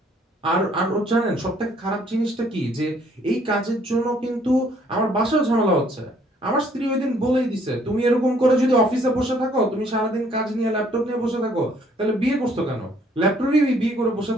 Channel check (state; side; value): normal; both; correlation 0.63